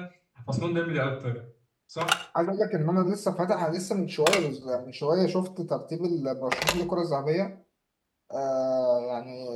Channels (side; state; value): both; identical; correlation 1.00